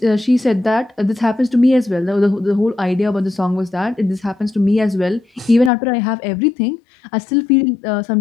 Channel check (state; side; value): drops out; right; at 5.7 s